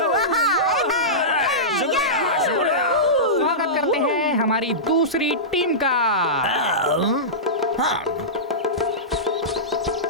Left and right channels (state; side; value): normal; both; correlation -0.16